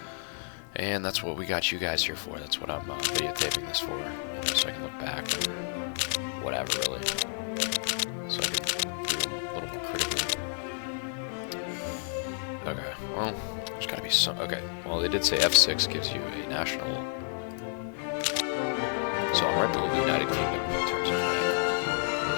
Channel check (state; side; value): silent; right; digital silence